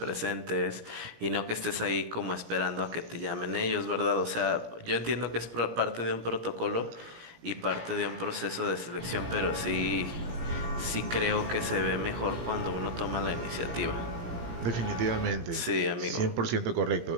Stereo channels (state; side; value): late; left; 17 ms